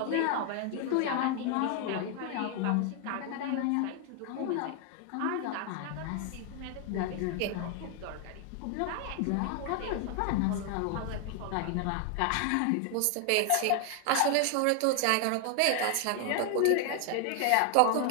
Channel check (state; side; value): different; both; correlation 0.00